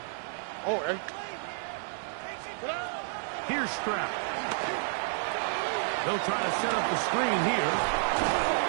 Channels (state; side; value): silent; left; digital silence